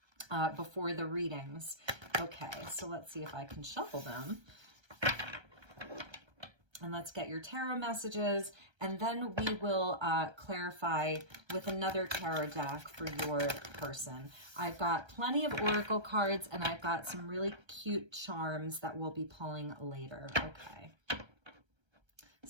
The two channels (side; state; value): left; late; 1.3 ms